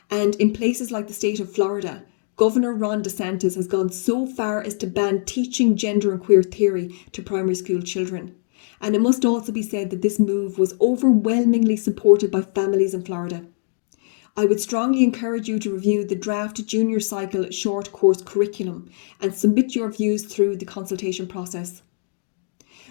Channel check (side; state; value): right; silent; digital silence